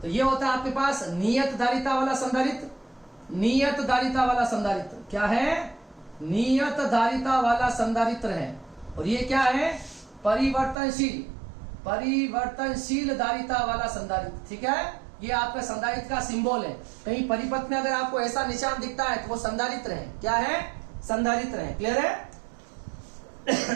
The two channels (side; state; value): left; drops out; at 10.8 s